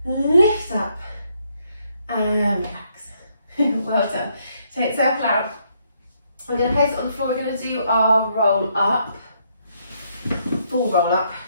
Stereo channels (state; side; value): inverted; both; correlation -0.73